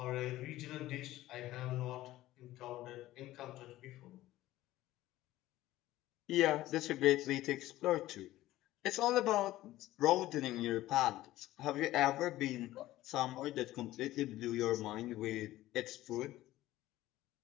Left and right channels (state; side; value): quieter; right; 15.7 dB